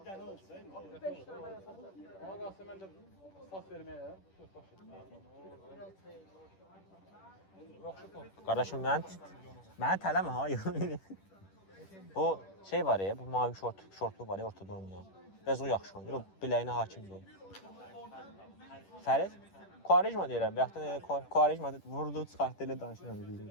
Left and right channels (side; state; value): right; late; 10 ms